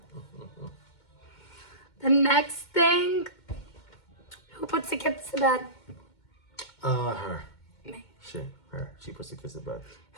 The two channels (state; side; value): late; right; 2.2 ms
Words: The next thing, who puts the kids to bed? Her. Me. Her. She puts the kids to bed.